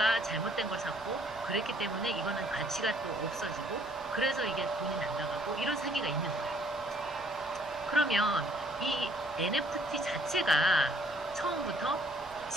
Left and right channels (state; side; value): normal; both; correlation 0.62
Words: 잘못된 걸 샀고, 그랬기 때문에 이거는 가치가 또 없어지고, 그래서 이게 돈이 날아가고 이런 사기가 있는 거예요. 그러면 이 NFT 자체가 처음부터